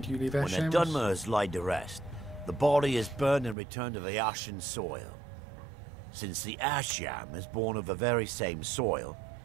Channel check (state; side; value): drops out; left; at 3.6 s